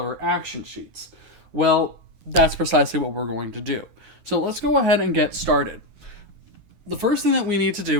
action sheets. Well, that's precisely what we're going to do. So let's go ahead and get started. The first thing that we need to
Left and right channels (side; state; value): left; late; 9.3 ms